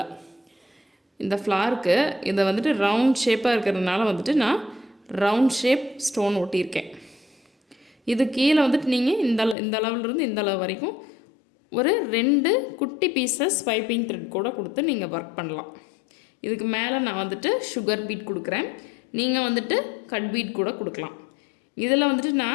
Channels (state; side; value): drops out; right; at 9.6 s